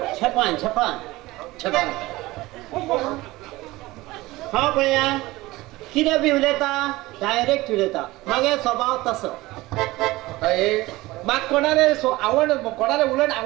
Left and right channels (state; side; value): quieter; left; 19.4 dB